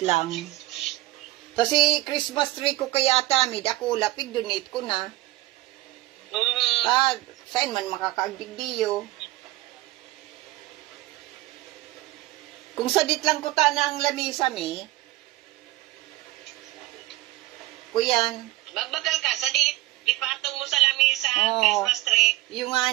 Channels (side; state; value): left; quieter; 18.2 dB